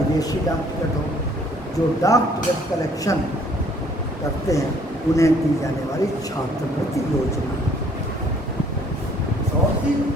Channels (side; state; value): both; normal; correlation 0.60